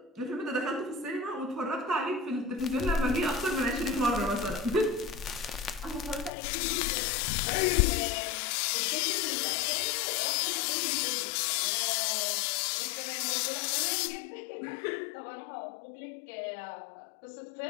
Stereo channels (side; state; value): right; drops out; at 6.3 s